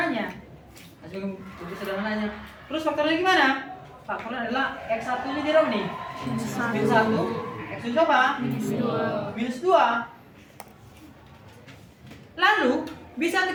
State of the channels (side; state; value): both; identical; correlation 1.00